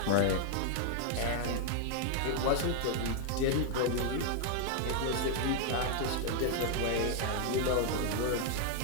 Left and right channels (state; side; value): different; both; correlation 0.00